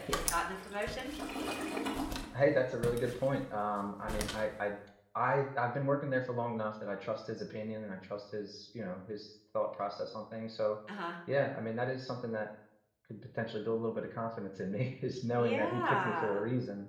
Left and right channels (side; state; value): both; identical; correlation 1.00